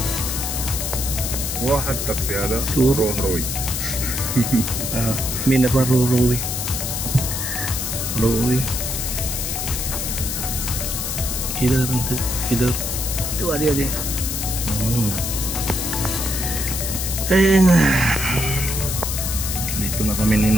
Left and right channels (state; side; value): noise; left; hiss, 3 dB below the sound